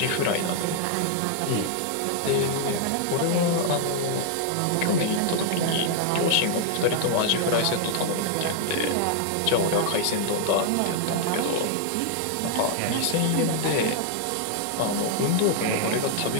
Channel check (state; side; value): different; both; correlation 0.00